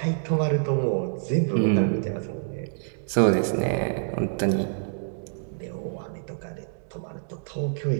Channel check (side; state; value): left; silent; digital silence